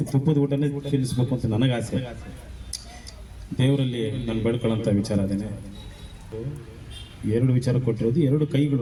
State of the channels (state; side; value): identical; both; correlation 1.00